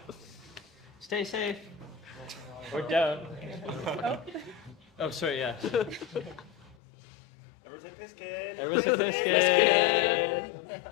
Stay safe. We're down. Oh, sorry, yeah. Everyone say piss kid. Everyone say piss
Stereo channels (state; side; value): drops out; right; at 6.8 s